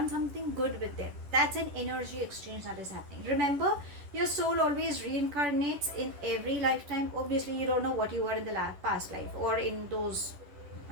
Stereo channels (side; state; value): left; late; 10 ms